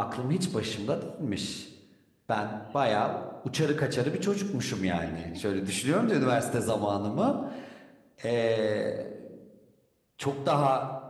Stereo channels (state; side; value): identical; both; correlation 1.00